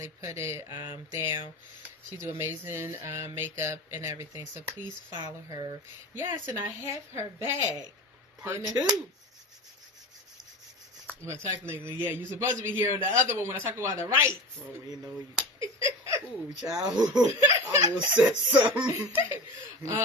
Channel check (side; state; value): both; normal; correlation 0.30